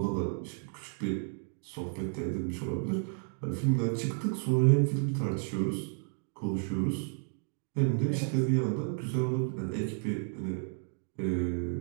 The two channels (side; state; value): left; silent; 56 dB below the other